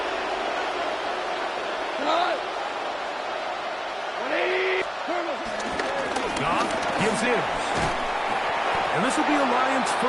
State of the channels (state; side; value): identical; both; correlation 1.00